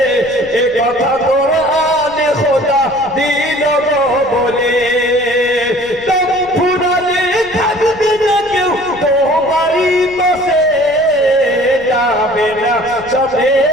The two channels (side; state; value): left; noise; rumble, 23 dB below the sound